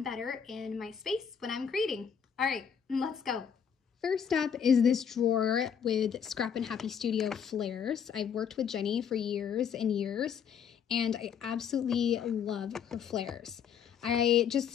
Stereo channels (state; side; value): quieter; right; 7.6 dB